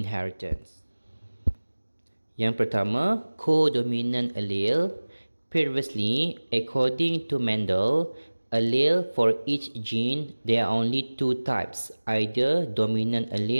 Yang pertama, codominant allele. Previously, according to Mendel, allele for each gene, there are only two types, either dominant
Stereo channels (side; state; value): both; inverted; correlation -1.00